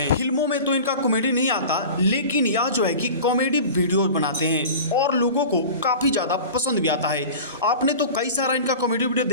फिल्मों में तो इनका कॉमेडी नहीं आता, लेकिन यह जो है कि कॉमेडी वीडियो बनाते हैं और लोगों को काफ़ी ज़्यादा पसंद भी आता है। आपने तो कई सारा इनका कॉमेडी वीडियो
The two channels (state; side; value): inverted; both; correlation -0.36